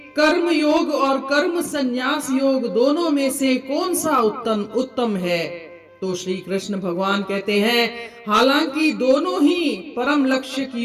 कर्म योग और कर्म संन्यास योग दोनों में से कौन सा उत्तम है। तो श्री कृष्ण भगवान कहते हैं, हालांकि दोनों ही परम लक्ष्य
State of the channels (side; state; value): both; identical; correlation 1.00